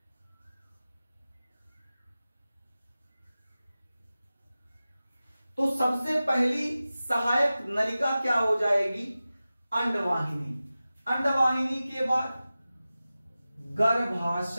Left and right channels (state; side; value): inverted; both; correlation -0.95